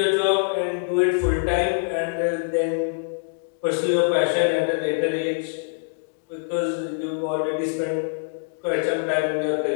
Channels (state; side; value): silent; right; digital silence